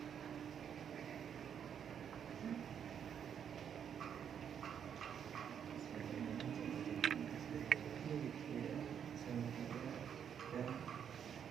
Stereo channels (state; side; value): quieter; left; 8.3 dB